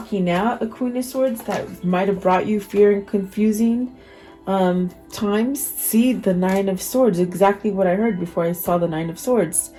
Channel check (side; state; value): both; identical; correlation 1.00